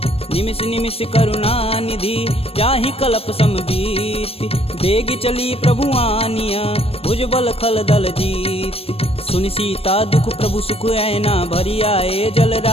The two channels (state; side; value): late; right; 0.28 ms